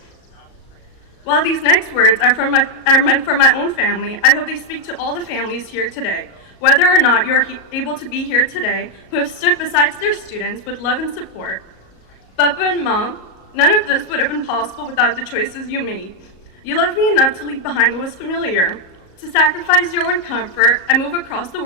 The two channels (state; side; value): late; right; 37 ms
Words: While these next words are meant for my own family, I hope they speak to all the families here today, whether or not you're able to be here today, who have stood beside their students with love and support. Papa and Mom, none of this would have been possible without the choices you made. You loved me enough to leave behind what was familiar, to sacrifice your own comfort and move across the